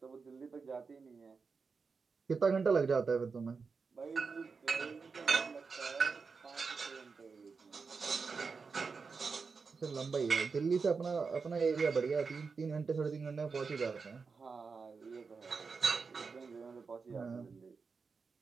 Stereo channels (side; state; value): left; quieter; 5.0 dB